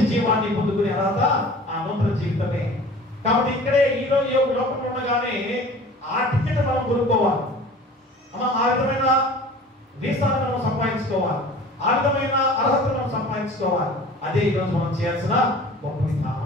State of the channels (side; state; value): both; normal; correlation 0.44